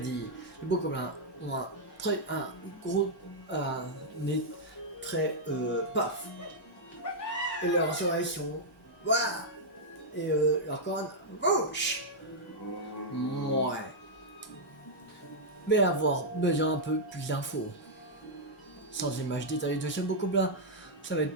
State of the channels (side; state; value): both; normal; correlation -0.06